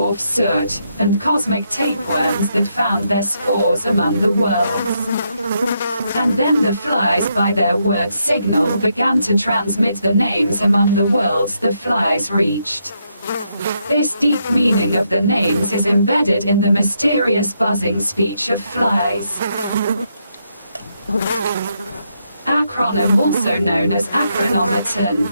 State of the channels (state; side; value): inverted; both; correlation -0.79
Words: soot, and cosmic tapeworms that found their spores among the worlds. And then the flies by their word signal began to transmit the names among the worlds the flies reached. This deep meaning of the names is embedded in the mysterious buzzing speech of flies. Acronym, also known as acronometon,